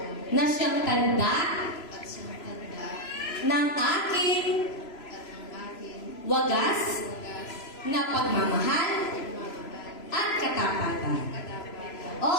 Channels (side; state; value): right; late; 3.0 ms